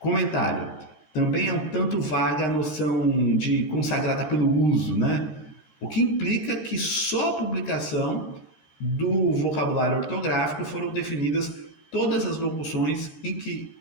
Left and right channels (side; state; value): right; late; 13 ms